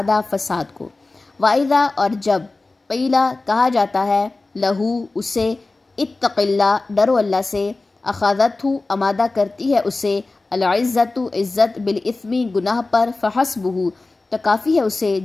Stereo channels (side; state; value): right; quieter; 3.3 dB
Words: فساد کو۔ وَإِذَا، اور جب، قیلا، کہا جاتا ہے، لہو، اسے، اتق اللہ، ڈرو اللہ سے، اخذتہ، آمادہ کرتی ہے اسے، العزت، عزت، بالاثم، گناہ پر، فحسبہ، تو کافی ہے اسے،